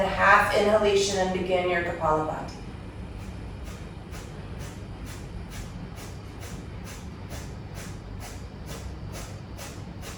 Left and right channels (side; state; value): both; identical; correlation 1.00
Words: half inhalation and begin your Kapalabhati.